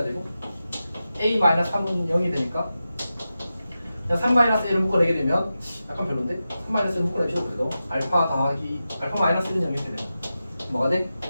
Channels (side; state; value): both; inverted; correlation -0.92